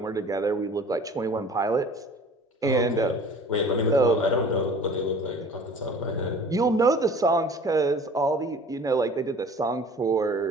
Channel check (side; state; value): both; normal; correlation 0.46